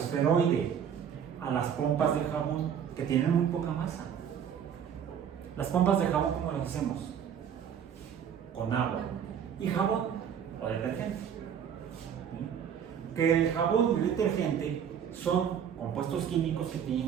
a las pompas de jabón, que tienen muy poca masa. Las pompas de jabón, ¿cómo las hacemos? Con agua y jabón o detergente. Que el jabón y el detergente son compuestos químicos que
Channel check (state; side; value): quieter; left; 8.3 dB